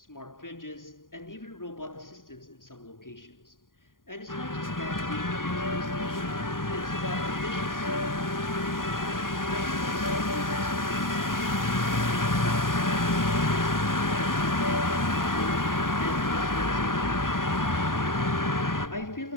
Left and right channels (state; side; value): late; right; 0.90 ms